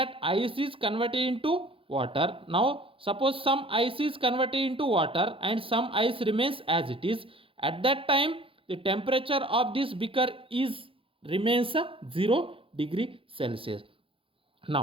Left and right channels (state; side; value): late; left; 0.26 ms